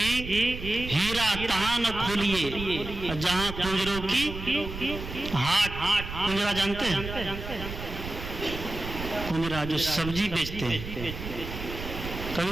हीरा तहां न खोलिए जहां कुंजरों की हाट। कुंजरा जानते हैं? कुंजरा जो सब्जी बेचते हैं,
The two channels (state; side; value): noise; right; rumble, 8 dB below the sound